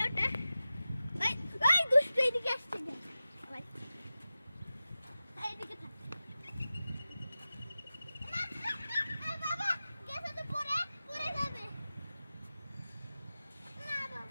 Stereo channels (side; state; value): both; inverted; correlation -0.95